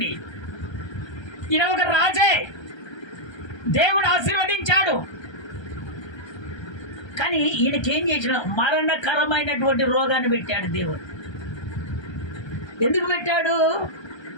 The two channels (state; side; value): late; right; 1.3 ms